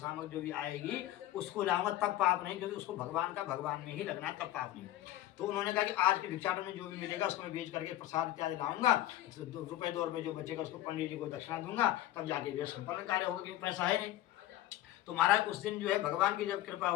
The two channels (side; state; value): right; quieter; 14.5 dB